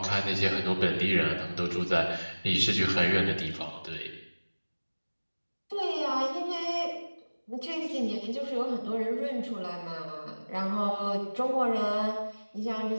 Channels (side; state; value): both; inverted; correlation -1.00